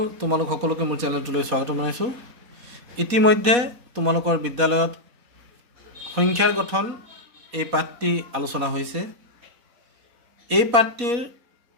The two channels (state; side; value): late; left; 4.1 ms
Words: তোমালোক সকলোকে মোৰ চেনেলটোলৈ স্বাগতম জনাইছোঁ। ইতিমধ্যে তোমালোকৰ বিদ্যালয়ত সংখ্যাৰ গঠন এই পাঠটি আলোচনা হৈছে। এই পাঠটিৰ